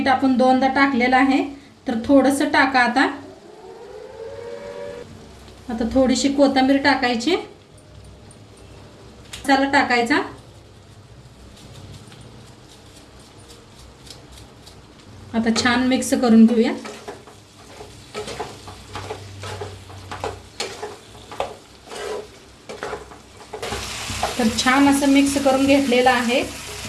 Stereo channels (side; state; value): both; identical; correlation 1.00